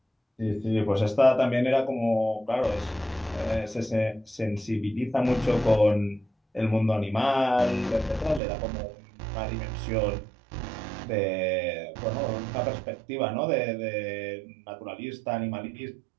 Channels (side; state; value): left; drops out; at 8.4 s